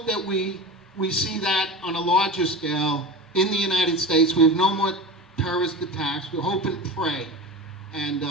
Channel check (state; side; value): normal; both; correlation 0.29